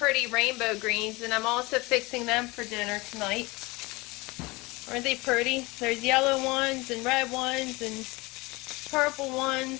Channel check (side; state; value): right; quieter; 23.5 dB